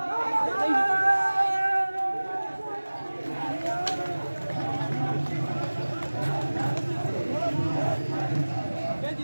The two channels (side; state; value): both; inverted; correlation -1.00